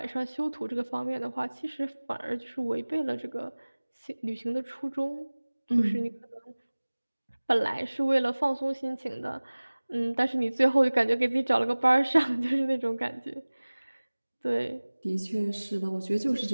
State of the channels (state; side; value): inverted; both; correlation -1.00